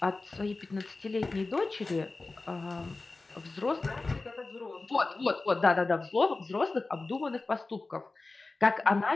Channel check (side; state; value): right; quieter; 3.5 dB